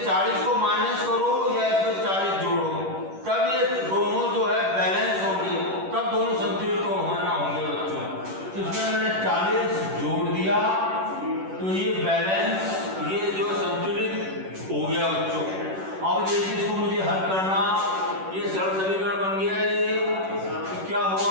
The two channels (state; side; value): late; left; 10 ms